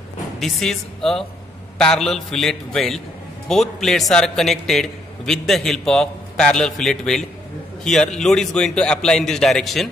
this is a parallel fillet weld. Both plates are connected with the help of parallel fillet weld. Here load is going to apply in this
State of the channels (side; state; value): both; normal; correlation 0.71